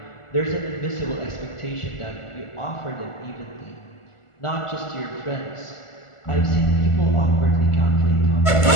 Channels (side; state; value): right; late; 1.4 ms